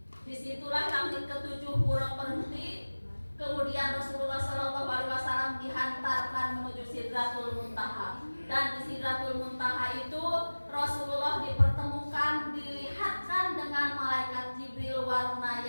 disitulah langit ketujuh Buraq berhenti. Kemudian Rasulullah SAW dihantarkan menuju Sidratul Muntaha. Dan di Sidratul Muntaha itu Rasulullah dipertemukan, dilihatkan dengan malaikat Jibril warna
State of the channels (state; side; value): inverted; both; correlation -1.00